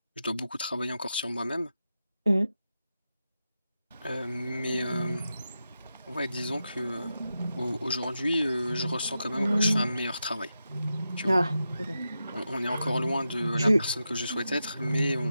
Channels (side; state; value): both; inverted; correlation -0.89